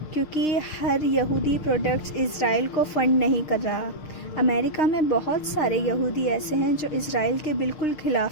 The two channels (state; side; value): late; right; 6.5 ms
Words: کیونکہ ہر یہودی پروڈکٹس اسرائیل کو فنڈ نہیں کر رہا۔ امریکہ میں بہت سارے یہودی ایسے ہیں جو اسرائیل کے بالکل